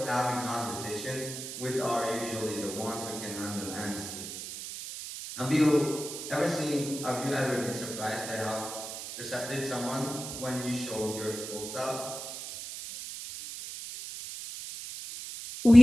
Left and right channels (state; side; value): noise; right; hiss, 8 dB below the sound